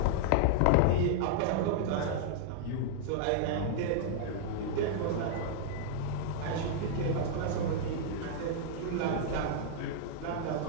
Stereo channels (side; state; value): both; different; correlation -0.01